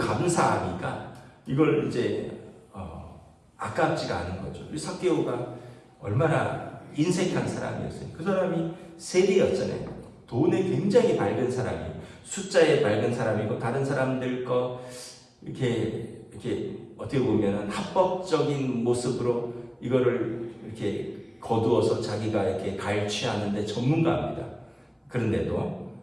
이걸 이제 아깝지가 않은 거죠. 삭개오가 얼마나 인색한 사람이었어요. 그 사람이 세리였잖아요. 돈에 굉장히 밝은 사람이에요. 숫자에 밝은 사람이고 다른 사람들 거 이렇게 어떻게 보면 합법적인 모습으로 이거를 이렇게 거두어서 자기가 이렇게 갈취하는데 전문가입니다. 그런데도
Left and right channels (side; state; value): both; identical; correlation 1.00